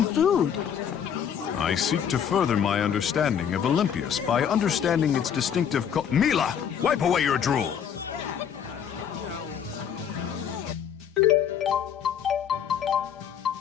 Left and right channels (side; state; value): right; quieter; 8.3 dB